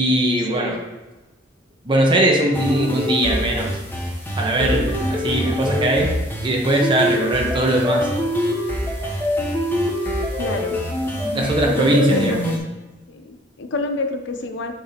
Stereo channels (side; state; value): both; normal; correlation 0.55